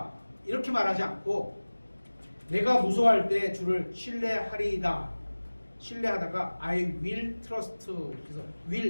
이렇게 말하지 않고 내가 무서워할 때 주를 신뢰하리이다. 신뢰하다가 I will trust, 그래서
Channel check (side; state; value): both; inverted; correlation -1.00